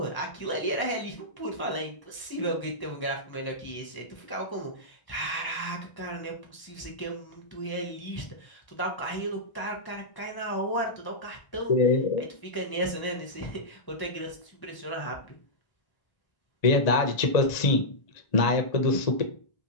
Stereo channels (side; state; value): right; late; 1.0 ms